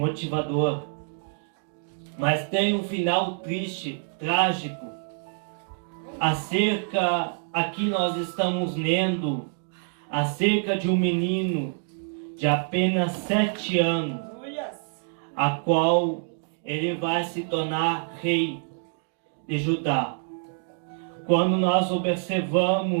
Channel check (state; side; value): silent; left; 61 dB below the other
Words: mas tem um final triste, trágico. Aqui nós estamos lendo acerca de um menino de apenas 7 anos, a qual ele vai se tornar rei de Judá. Quando nós